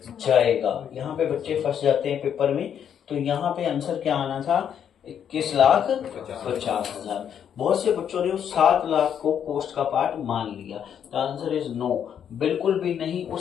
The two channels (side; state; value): right; quieter; 8.7 dB